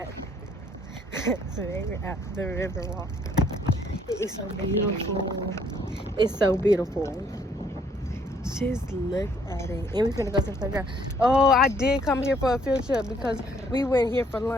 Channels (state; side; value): normal; both; correlation 0.65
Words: the Riverwalk. It's so beautiful. It's so beautiful. Just look at it. And we're gonna go to the playground. Oh, I did come here for a field trip because we went here for